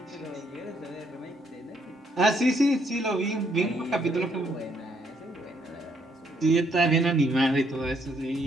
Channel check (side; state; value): both; normal; correlation 0.71